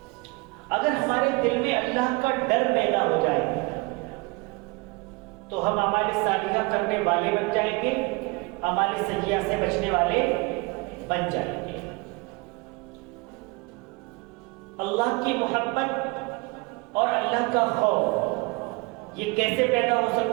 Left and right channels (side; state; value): left; quieter; 26.9 dB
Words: اگر ہمارے دل میں اللہ کا ڈر پیدا ہو جائے تو ہم اعمال صالحہ کرنے والے بن جائیں گے، اعمال سیئہ سے بچنے والے بن جائیں گے۔ اللہ کی محبت اور اللہ کا خوف یہ کیسے پیدا ہو